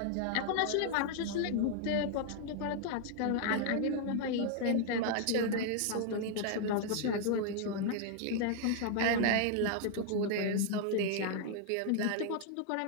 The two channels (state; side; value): different; both; correlation 0.00